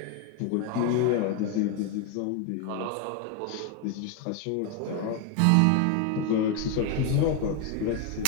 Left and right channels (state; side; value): different; both; correlation 0.02